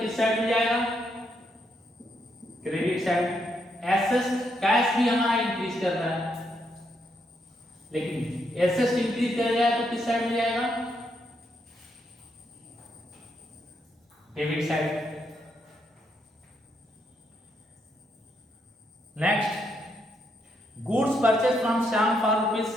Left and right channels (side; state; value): both; normal; correlation 0.77